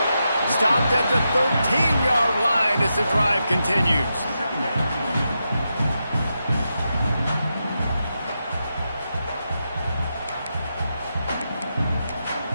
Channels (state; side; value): inverted; both; correlation -0.87